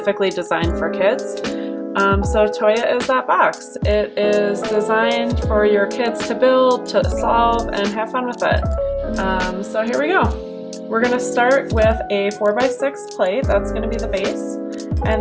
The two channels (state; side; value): identical; both; correlation 1.00